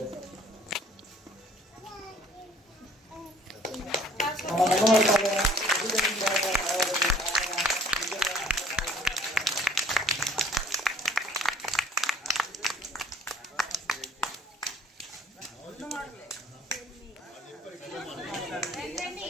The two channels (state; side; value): normal; both; correlation 0.55